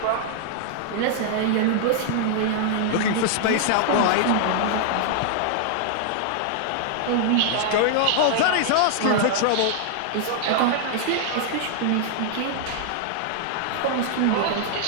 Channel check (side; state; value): both; different; correlation -0.01